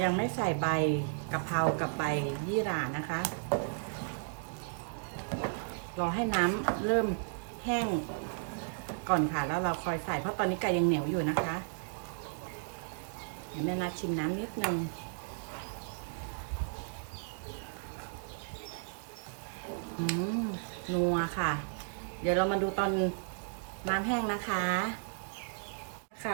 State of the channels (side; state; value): left; silent; digital silence